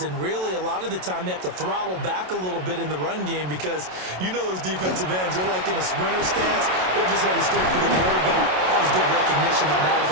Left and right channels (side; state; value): left; late; 27 ms